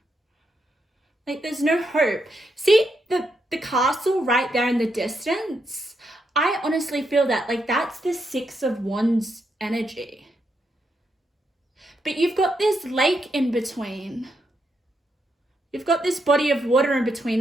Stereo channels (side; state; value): both; normal; correlation 0.81